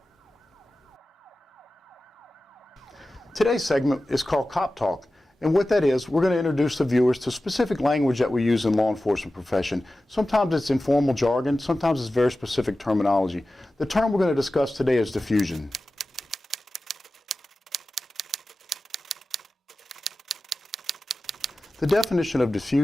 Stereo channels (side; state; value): both; normal; correlation 0.95